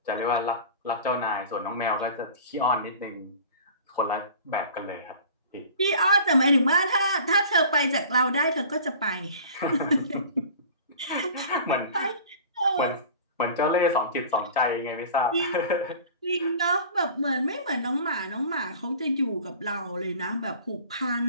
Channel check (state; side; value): inverted; both; correlation -0.42